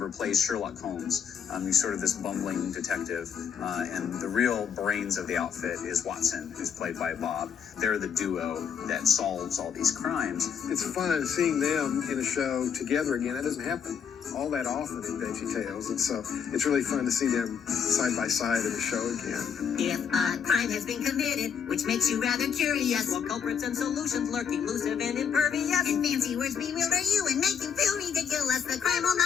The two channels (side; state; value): right; quieter; 7.3 dB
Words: plays Sherlock Holmes. He's sort of this bumbling detective, and the real brains of the outfit is Watson, who's played by Bob. They're the duo that solves all these crimes. It's fun seeing them in a show together again. That doesn't happen all that often in VeggieTales, and so it's really fun to see them side by side in the show again. If a crime has been committed, which makes you rather curious, while culprits and solutions lurk elusive and impervious, and fancy words bewilder you and make you feel ridiculous, the crime will